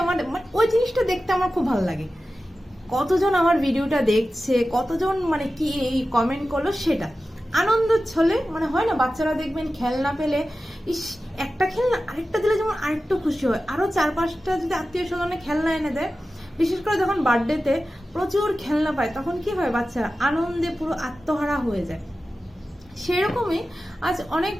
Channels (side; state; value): both; normal; correlation 0.94